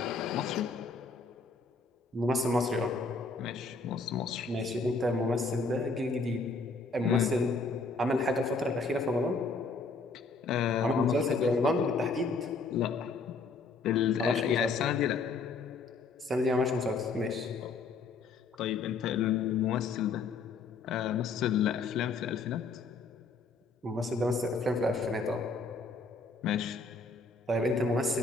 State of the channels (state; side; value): quieter; right; 4.0 dB